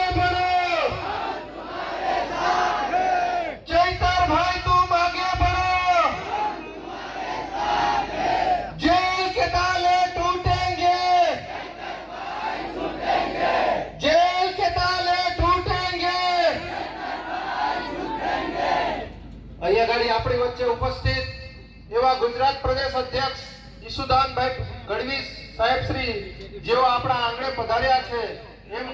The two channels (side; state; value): both; identical; correlation 1.00